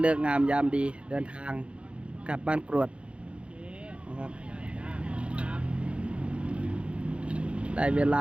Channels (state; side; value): late; left; 0.059 ms